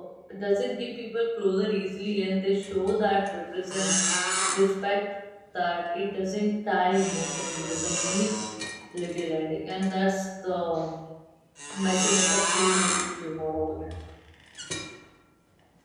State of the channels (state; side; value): identical; both; correlation 1.00